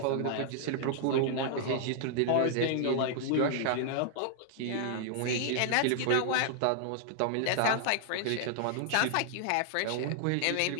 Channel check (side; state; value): both; different; correlation 0.00